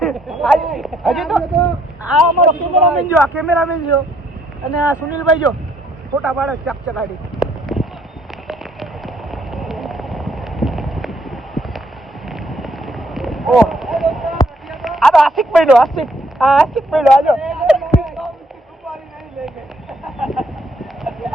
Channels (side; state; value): both; normal; correlation 0.68